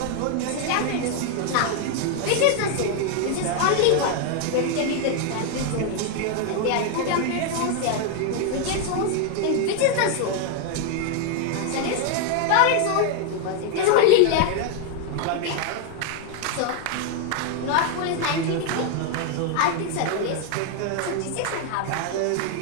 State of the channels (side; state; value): both; different; correlation 0.01